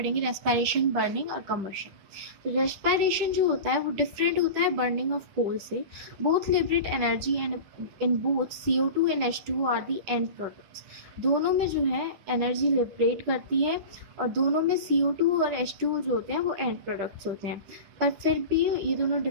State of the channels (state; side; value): late; left; 10 ms